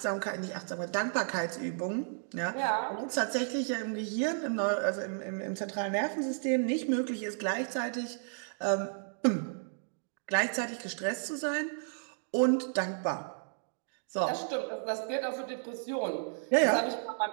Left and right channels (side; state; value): left; silent; digital silence